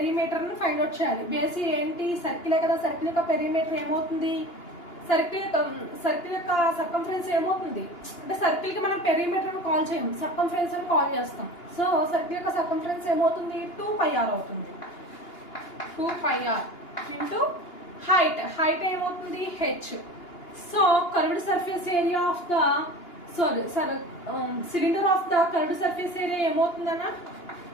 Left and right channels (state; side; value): late; right; 2.8 ms